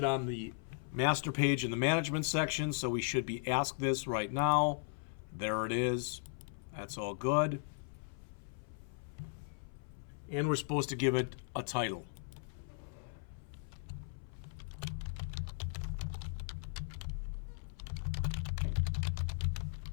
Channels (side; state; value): right; silent; 53 dB below the other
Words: on the master page in the management section, so we should be asked this right now. There it is. That's all good. And we're supposed to give it a title.